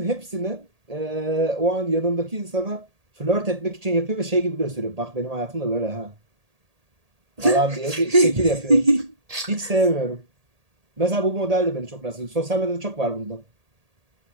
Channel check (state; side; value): late; left; 1.8 ms